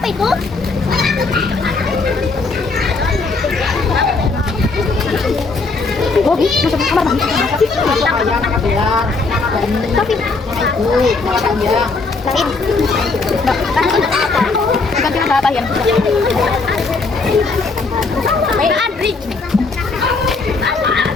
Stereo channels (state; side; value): quieter; right; 4.0 dB